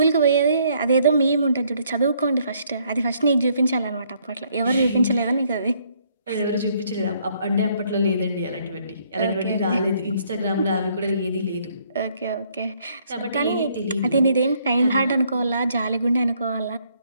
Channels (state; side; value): inverted; both; correlation -0.67